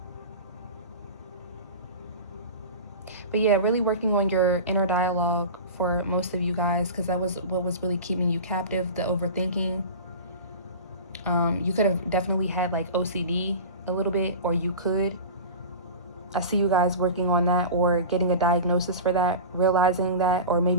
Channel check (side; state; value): both; inverted; correlation -0.31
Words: But yeah, really working on your inner dialogue for most of you guys, because that was what was really keeping you captive, the overthinking. You could have definitely had like OCD a little bit, or you could. I see you guys working on that, or getting a diagnosis for that, realizing that, or